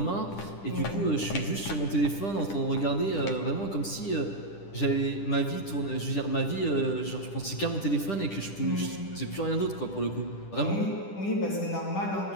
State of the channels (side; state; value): right; late; 10 ms